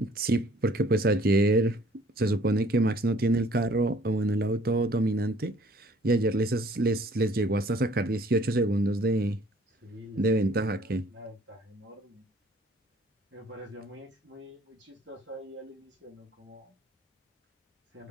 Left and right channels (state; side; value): normal; both; correlation 0.57